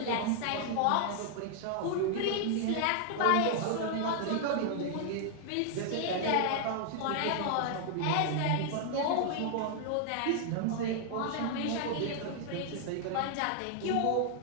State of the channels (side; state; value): both; different; correlation 0.00